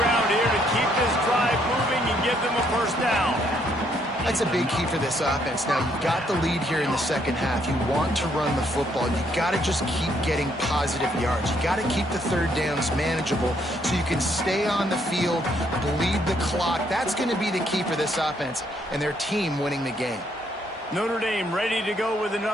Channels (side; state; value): both; normal; correlation 0.70